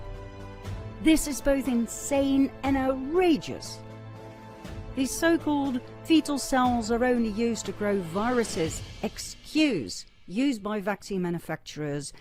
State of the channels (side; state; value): both; identical; correlation 1.00